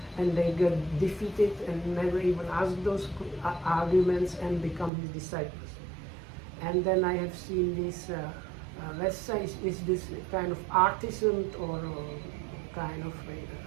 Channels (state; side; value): drops out; left; at 4.9 s